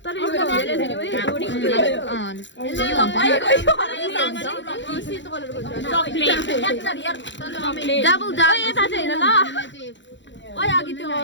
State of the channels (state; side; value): late; right; 0.53 ms